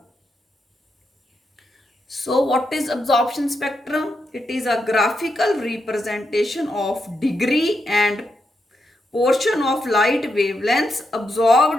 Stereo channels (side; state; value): both; normal; correlation 0.83